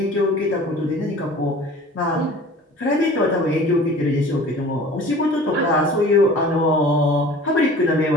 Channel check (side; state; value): both; normal; correlation 0.44